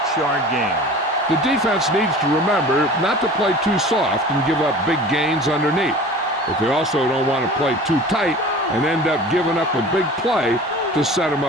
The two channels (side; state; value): both; normal; correlation 0.41